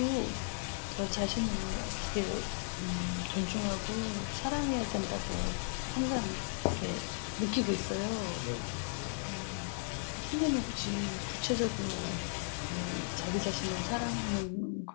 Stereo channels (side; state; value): right; silent; 54 dB below the other